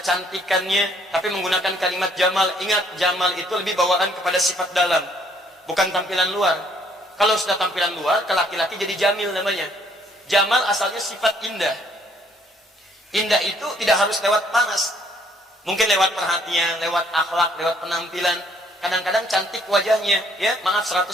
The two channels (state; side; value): normal; both; correlation 0.65